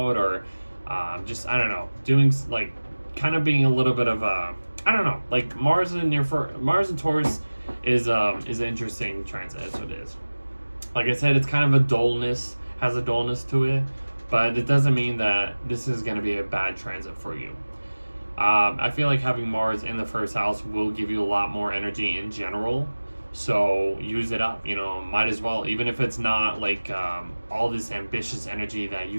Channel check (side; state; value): both; inverted; correlation -1.00